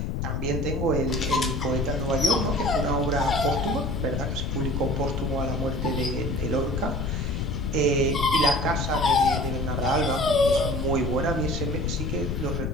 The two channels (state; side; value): noise; left; rumble, 2 dB below the sound